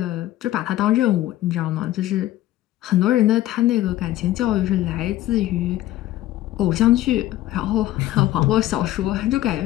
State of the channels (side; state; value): right; quieter; 14.6 dB